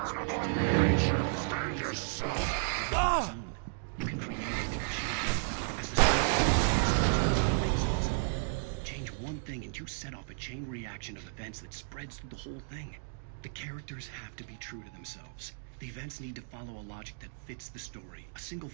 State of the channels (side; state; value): left; silent; digital silence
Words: what you tell it. The story is yourself. Its own. You can create it, shape it. As the story things of its own. Change one thing and you set off a chain reaction of events that spreads through the whole thing. The characters have to be true to themselves. The events need to follow a logic that fits the story. A single